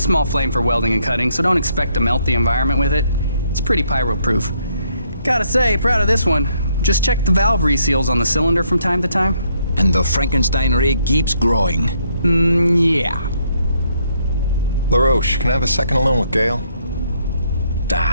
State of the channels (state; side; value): inverted; both; correlation -0.72